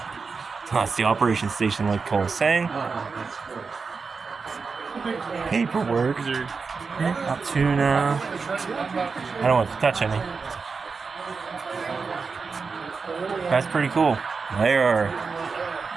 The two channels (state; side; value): quieter; left; 4.9 dB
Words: That's the operation station, like Cole was saying. Paperwork. Altoona. I don't want to touch any. That's pretty cool. They're